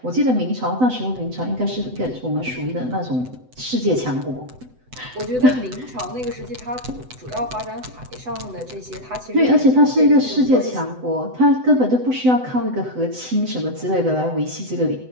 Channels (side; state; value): left; late; 7.9 ms